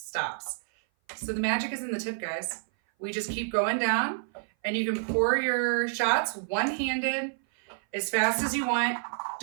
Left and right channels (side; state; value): left; silent; 57 dB below the other